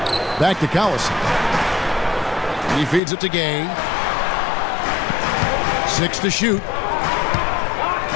Back to Collison. He feeds it to Gay. 6 to shoot.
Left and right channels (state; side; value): drops out; right; at 3.0 s